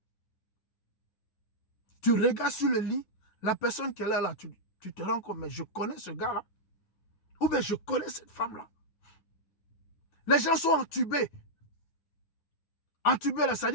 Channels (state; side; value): late; right; 9.8 ms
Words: Tu regardes sur le lit, la personne qui est là, tu te rends compte, mais je connais ce gars-là. Ou bien je connais cette femme-là. Les gens sont entubés. Entubés, là, ça